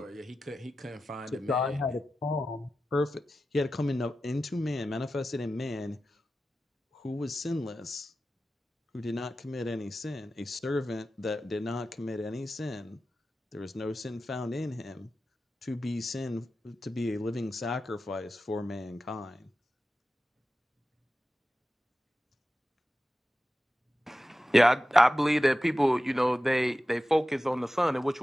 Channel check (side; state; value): both; normal; correlation 0.93